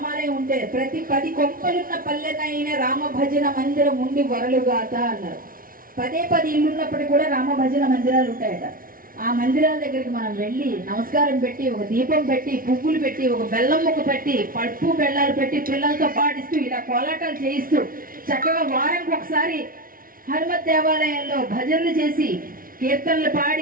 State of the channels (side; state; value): left; late; 0.42 ms